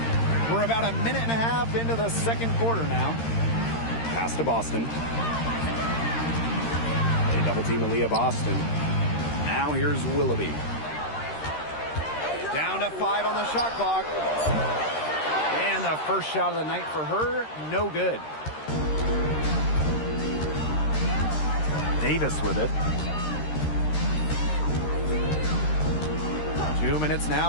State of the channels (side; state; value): right; late; 13 ms